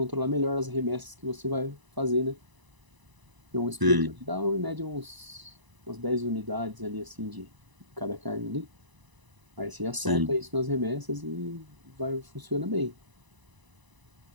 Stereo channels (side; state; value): left; late; 1.0 ms